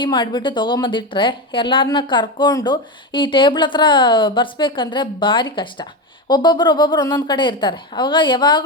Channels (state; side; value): normal; both; correlation 0.16